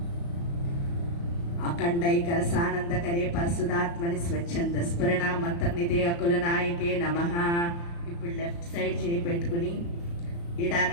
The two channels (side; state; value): right; late; 35 ms